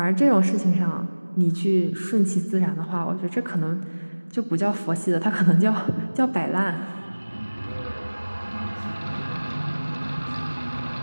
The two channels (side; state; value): both; inverted; correlation -1.00